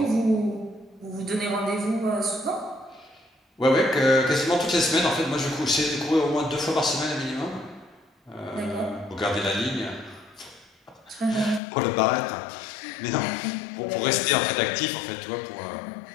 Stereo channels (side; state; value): right; drops out; at 11.6 s